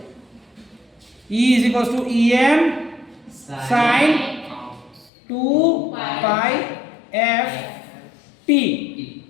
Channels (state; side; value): drops out; right; at 5.1 s